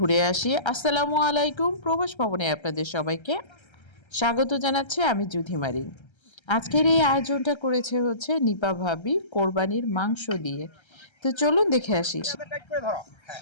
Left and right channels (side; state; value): right; late; 1.3 ms